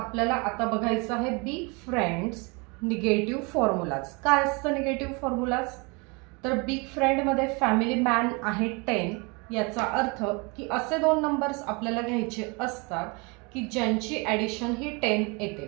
आता बघायचं आहे बिग फ्रेंड्स निगेटिव्ह फॉर्म्युलाज। काय असतं निगेटिव्ह फॉर्म्युलाज? तर बिग फ्रेंड मध्ये फॅमिली मॅन आहे 10, याचा अर्थ की असे दोन नंबर्स आपल्याला घ्यायचे असतात की ज्यांची ॲडिशन ही 10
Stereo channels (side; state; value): left; quieter; 29.7 dB